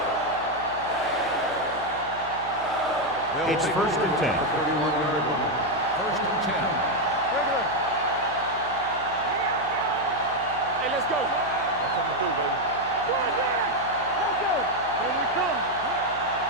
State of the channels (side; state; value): left; noise; hum, 17 dB below the sound